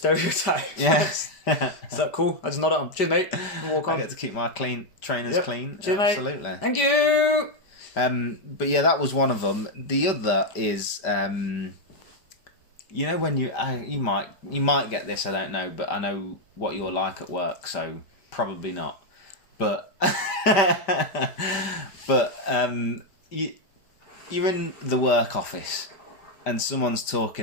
Yes. Is that cool? I just nod at them. Cheers, mate. Walk on. I get to keep my trainers clean. Cheers, absolutely. Mate. Thank you! But yeah, that was one of them. The other is... when you might get this, I don't know, but I know what you're like at work, so probably not. But you're in the work office, and someone's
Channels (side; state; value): right; late; 5.1 ms